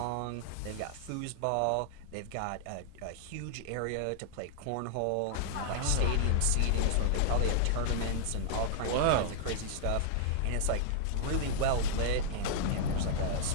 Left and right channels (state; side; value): different; both; correlation -0.01